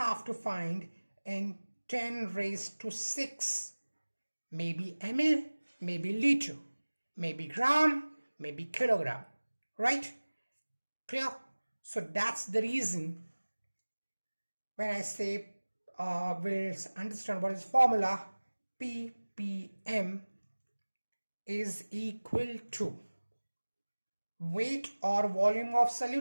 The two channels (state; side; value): inverted; both; correlation -1.00